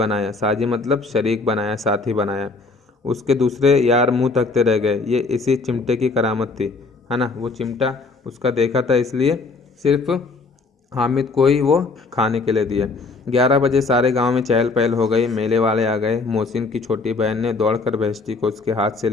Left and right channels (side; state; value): right; quieter; 3.9 dB